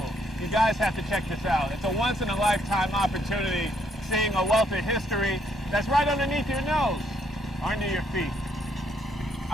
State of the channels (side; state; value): both; normal; correlation 0.70